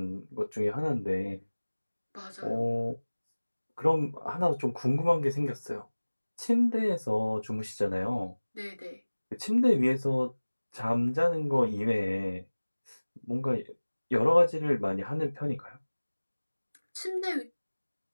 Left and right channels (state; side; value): inverted; both; correlation -1.00